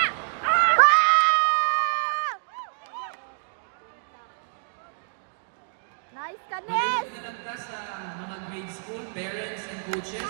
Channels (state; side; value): silent; left; digital silence